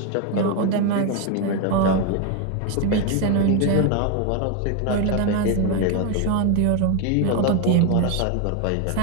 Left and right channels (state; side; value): different; both; correlation 0.01